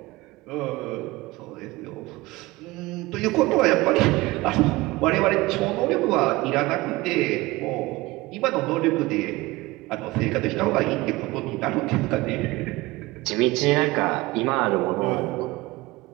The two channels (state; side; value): quieter; left; 20.5 dB